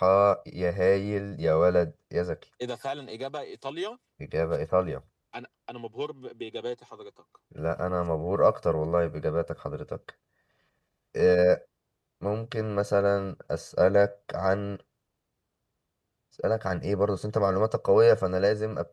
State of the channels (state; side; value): identical; both; correlation 1.00